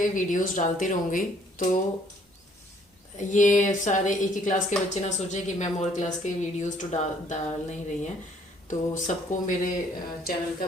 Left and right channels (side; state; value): both; normal; correlation 0.62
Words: वीडियोस डालती रहूँगी। तो ये सारे एक ही क्लास के बच्चे ना सोचे कि मैम और क्लास के वीडियोस तो डाल नहीं रही हैं, तो सबको मेरे चैनल का